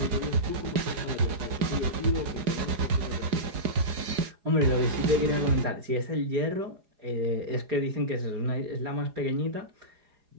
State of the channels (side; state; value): left; late; 4.9 ms